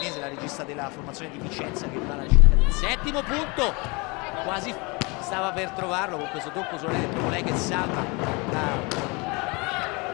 la regista della formazione di Vicenza, che va alla ricerca del settimo punto, quasi stava per trovarlo con questo tocco solare, proprio lei che salva la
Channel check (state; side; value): quieter; right; 28.3 dB